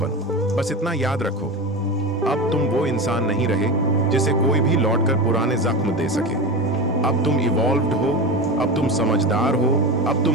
बस इतना याद रखो, अब तुम वो इंसान नहीं रहे जिसे कोई भी लौटकर पुराने जख्म दे सके। अब तुम इवॉल्व्ड हो, अब तुम समझदार हो, अब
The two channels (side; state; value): both; normal; correlation 0.24